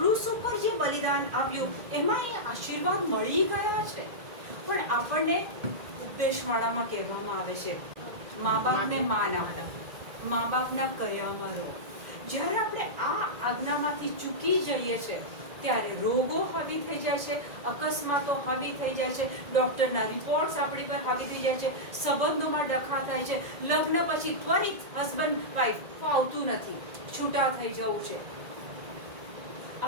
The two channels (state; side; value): late; left; 1.9 ms